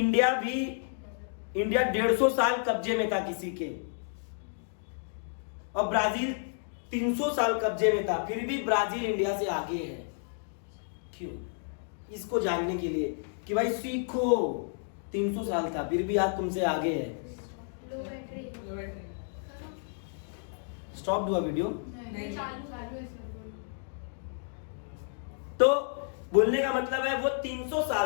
150 साल कब्जे में था किसी के, और ब्राजील 300 साल कब्जे में था, फिर भी ब्राजील इंडिया से आगे है। क्यों? इसको जानने के लिए कि भाई सीखो, 300 साल था फिर भी आज तुमसे आगे है। स्टॉप हुआ वीडियो? तो बोलने का मतलब है वो 300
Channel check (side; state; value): right; silent; digital silence